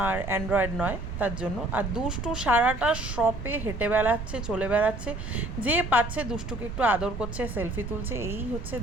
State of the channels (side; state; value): right; noise; rumble, 8 dB below the sound